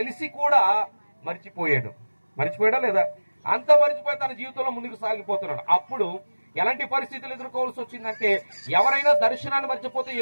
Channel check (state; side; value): inverted; both; correlation -1.00